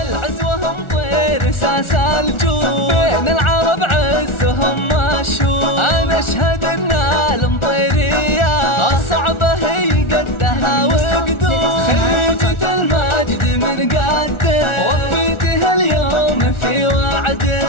هم طير ساس الجود، بين العرب عزهم مشهور. أنا أشهد أن المطيرية الصعبة هي قدها وقدود. خريجة المجد من قدك وفيتها اليوم في وعدك.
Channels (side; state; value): right; late; 1.4 ms